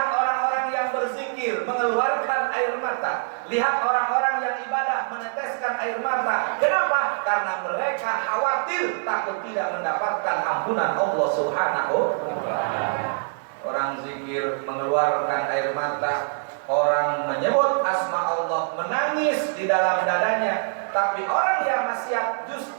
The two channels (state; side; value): silent; left; 62 dB below the other